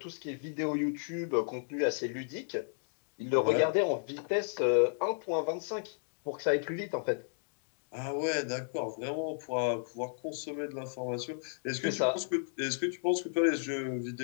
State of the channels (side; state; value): right; silent; digital silence